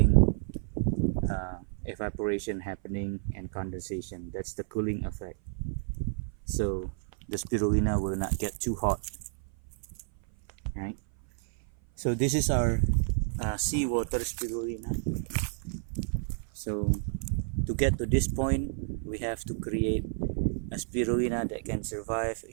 evaporation happening and condensation. That's the cooling effect. So the spirulina will not get too hot, right? So this is our seawater spirulina. So to get to this point, we have to create a spirulina that can survive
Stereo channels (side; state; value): left; silent; 56 dB below the other